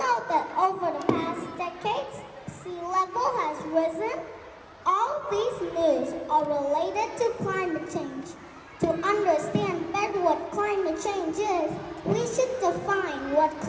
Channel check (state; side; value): identical; both; correlation 1.00